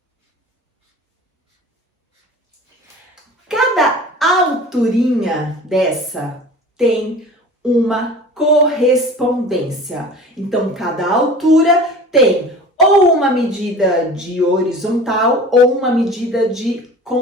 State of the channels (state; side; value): normal; both; correlation 0.40